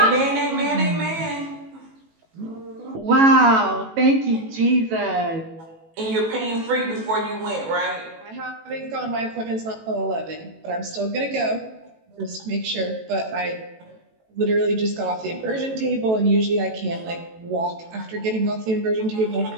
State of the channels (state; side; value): late; left; 18 ms